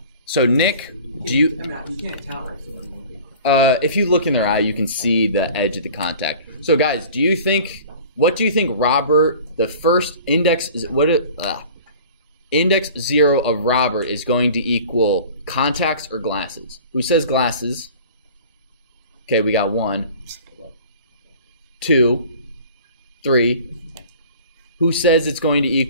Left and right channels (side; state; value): both; inverted; correlation -0.44